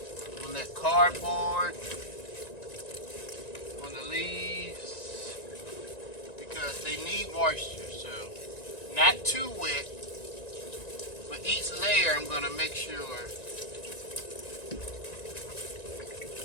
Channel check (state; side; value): late; right; 1.9 ms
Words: On that cardboard. On the leaves. Because they need moisture. So, not too wet. But each layer I'm going to make sure